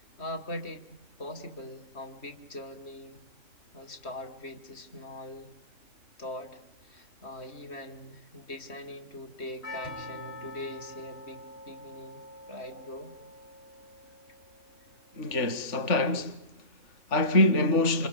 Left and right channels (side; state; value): right; late; 3.4 ms